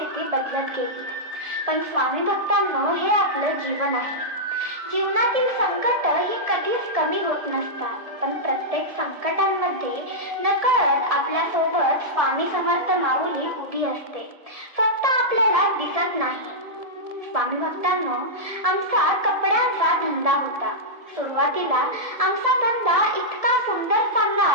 बदलत गेली. पण स्वामी भक्तांनो, हे आपलं जीवन आहे. जीवनातील संकट ही कधीच कमी होत नसतात, पण प्रत्येक संकटांमध्ये नकळत आपल्यासोबत स्वामी समर्थ माऊली उभी असते, फक्त आपल्याला दिसत नाही. स्वामी भक्तांनो, आमचा कपड्यांचा धंदा होता. सुरुवातीला आमचा धंदा इतका सुंदर चालला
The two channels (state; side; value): late; left; 1.7 ms